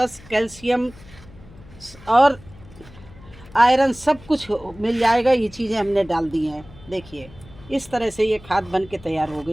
कैल्शियम और आयरन सब कुछ मिल जाएगा। ये चीज़ें हमने डाल दी हैं। देखिए इस तरह से ये खाद बन के तैयार हो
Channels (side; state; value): left; noise; hum, 21 dB below the sound